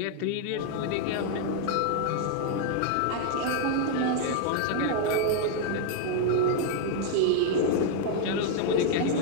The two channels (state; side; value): different; both; correlation 0.00